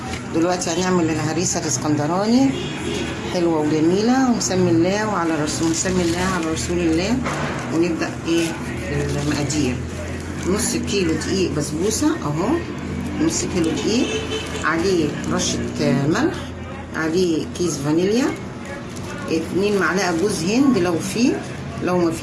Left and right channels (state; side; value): identical; both; correlation 1.00